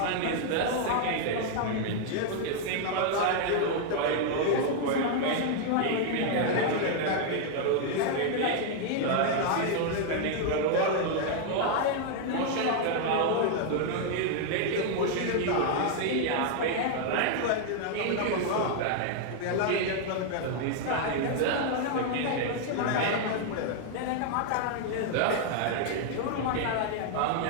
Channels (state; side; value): different; both; correlation 0.00